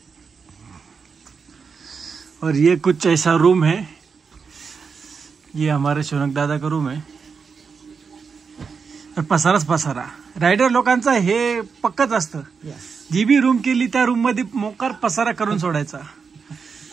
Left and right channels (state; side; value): quieter; left; 5.6 dB